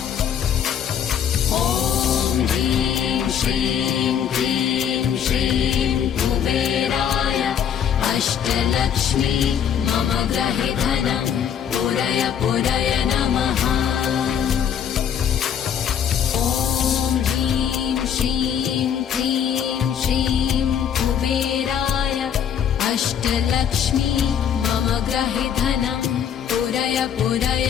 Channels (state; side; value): quieter; right; 8.6 dB